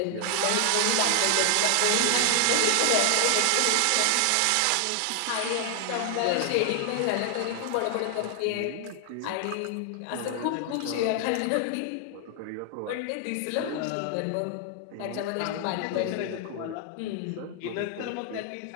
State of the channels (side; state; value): both; different; correlation 0.00